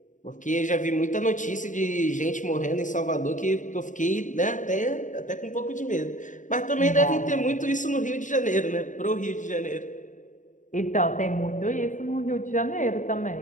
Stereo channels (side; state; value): right; late; 0.37 ms